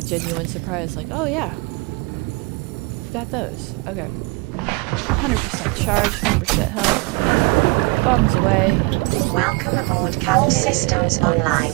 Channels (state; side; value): quieter; left; 27.2 dB